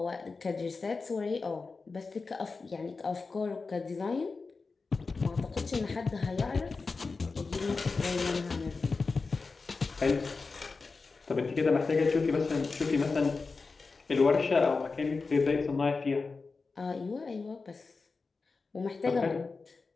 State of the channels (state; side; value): quieter; right; 4.2 dB